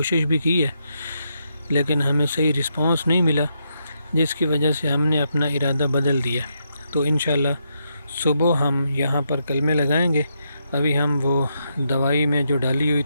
भी की है, लेकिन हमें सही रिस्पांस नहीं मिला, जिसकी वजह से हमने अपना इरादा बदल दिया। तो इंशाल्लाह सुबह हम यहाँ पर कलमें लगाएंगे। अभी हम वो दवाई में जो डाली हुई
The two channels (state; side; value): inverted; both; correlation -0.81